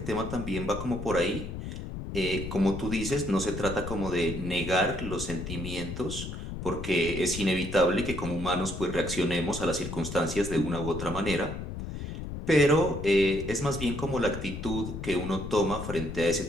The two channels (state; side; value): noise; left; rumble, 7 dB below the sound